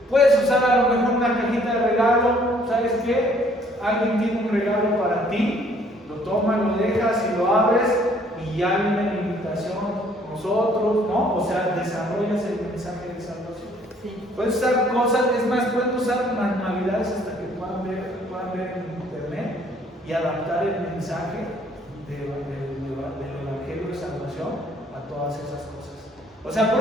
Puedes usar a lo mejor una cajita de regalo, ¿sabes qué? Alguien tiene un regalo para ti, lo tomas, lo dejas y lo abres y ya viene la invitación, nosotros, ¿no? O sea, desarrollas el mensaje de salvación. Puedes usar cosas, es más, pueden usar manualidades hasta que puedan ver en internet y adaptar el mensaje del Evangelio de Salvación a todas esas cosas. O sea, por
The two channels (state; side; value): normal; both; correlation 0.61